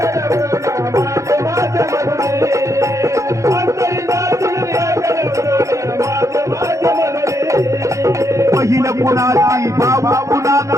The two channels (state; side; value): late; left; 0.15 ms